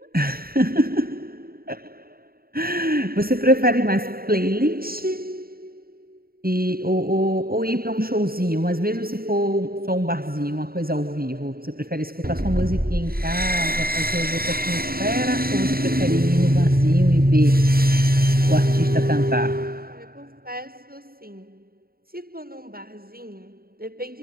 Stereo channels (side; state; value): left; late; 0.43 ms